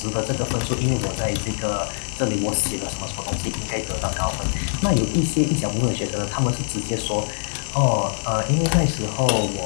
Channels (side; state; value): right; silent; 63 dB below the other